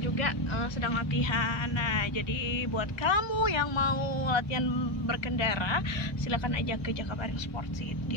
sedang latihan. Nah, jadi buat kamu yang mau latihan berkendara, silakan aja ke Jakabaring Sport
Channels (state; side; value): late; right; 1.3 ms